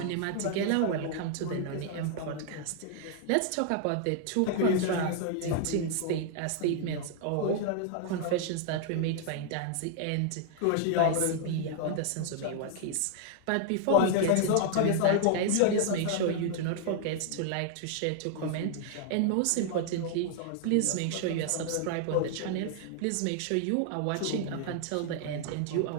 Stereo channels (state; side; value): different; both; correlation 0.00